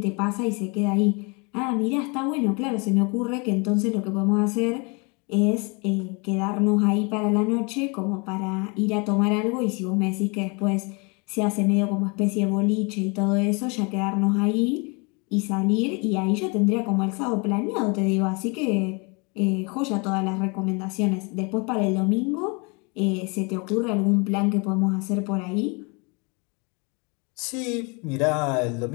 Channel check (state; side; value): quieter; right; 31.3 dB